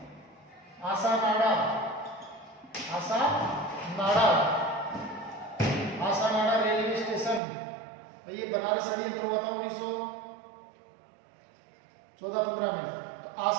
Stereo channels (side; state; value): left; drops out; at 7.4 s